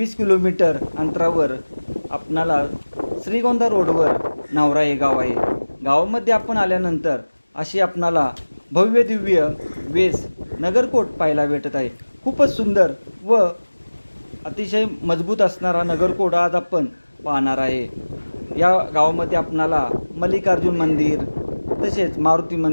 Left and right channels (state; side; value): inverted; both; correlation -1.00